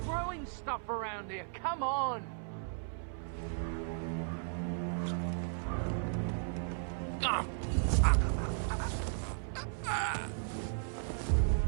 throwing stuff around here? Come on!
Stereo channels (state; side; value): silent; left; 54 dB below the other